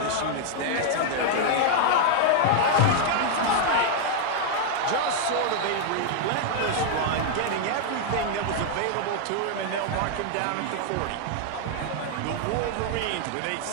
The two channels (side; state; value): both; different; correlation 0.00